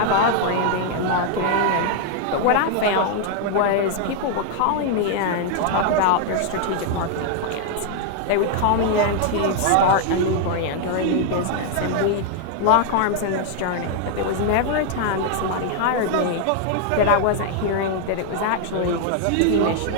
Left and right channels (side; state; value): both; different; correlation 0.00